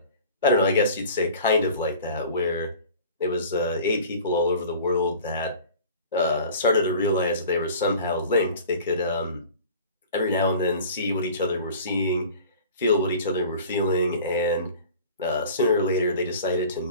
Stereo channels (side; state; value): both; inverted; correlation -0.43